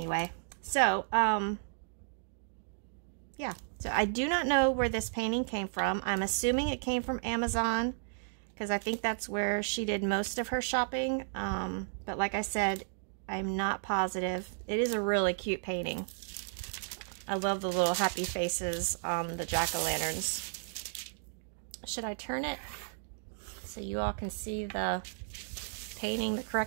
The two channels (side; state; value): left; silent; digital silence